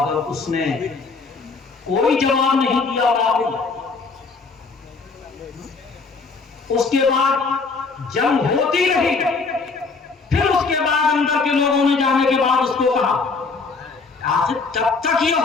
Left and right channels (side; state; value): right; quieter; 4.4 dB